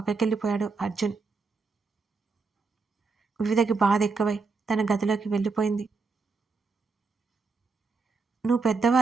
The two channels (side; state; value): left; quieter; 4.4 dB